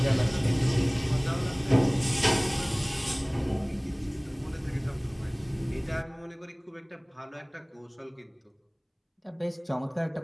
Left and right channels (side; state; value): both; identical; correlation 1.00